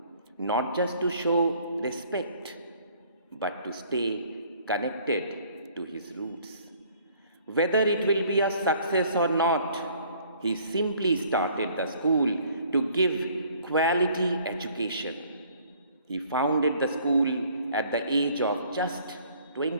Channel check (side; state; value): both; inverted; correlation -0.58